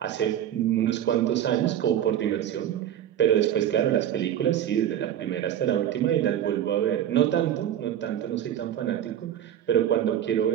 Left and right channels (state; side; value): quieter; left; 10.8 dB